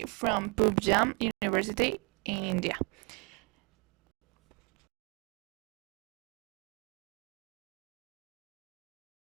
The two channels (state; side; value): quieter; left; 31.2 dB